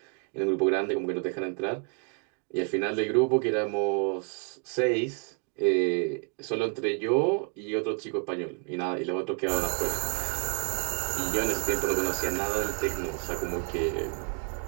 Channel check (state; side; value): quieter; left; 38.5 dB